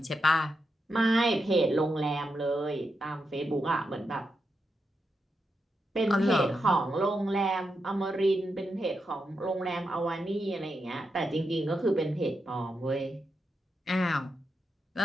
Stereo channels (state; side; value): normal; both; correlation 0.86